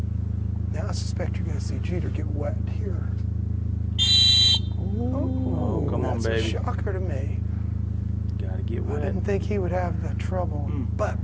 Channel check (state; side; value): identical; both; correlation 1.00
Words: Now I suspect you're going to see Jeter get wet here. Oh, come on, baby. That's a shocker to me. Gotta get wet. I didn't think he would have the trouble, but